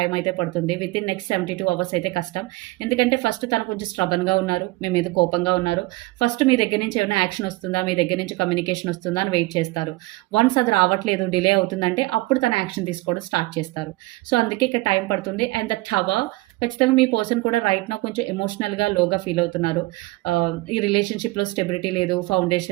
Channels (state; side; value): quieter; left; 21.0 dB